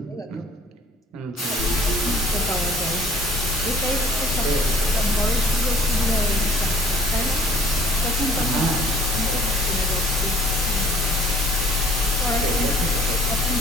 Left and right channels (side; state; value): both; normal; correlation 0.53